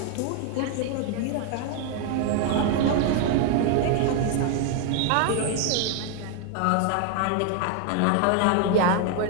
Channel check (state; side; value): different; both; correlation 0.01